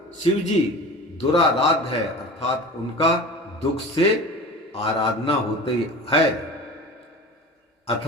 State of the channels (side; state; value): both; normal; correlation 0.36